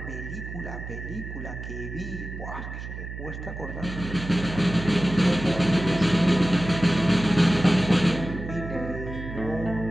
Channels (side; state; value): right; noise; hum, 9 dB below the sound